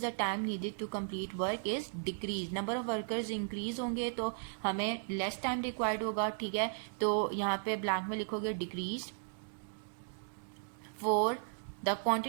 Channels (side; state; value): left; silent; digital silence